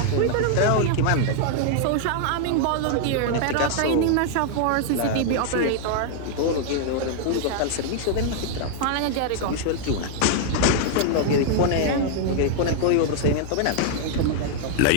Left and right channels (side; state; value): both; different; correlation 0.00